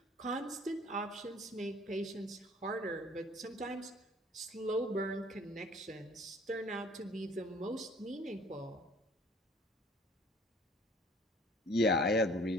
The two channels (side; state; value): both; normal; correlation 0.53